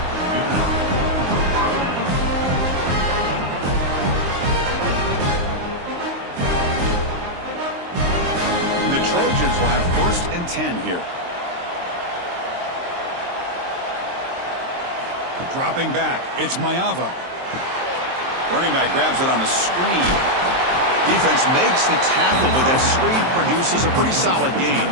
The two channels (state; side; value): late; left; 23 ms